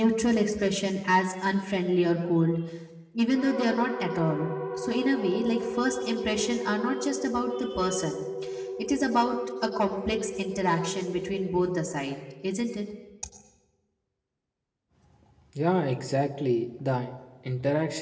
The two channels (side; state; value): both; identical; correlation 1.00